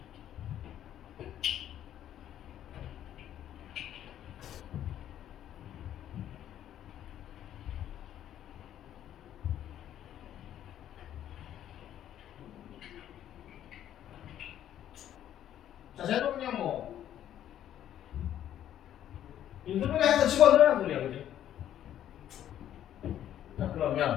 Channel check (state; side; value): quieter; right; 11.1 dB